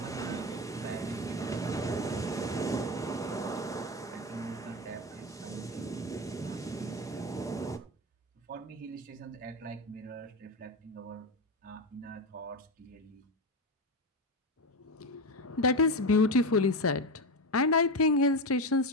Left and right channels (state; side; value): normal; both; correlation 0.16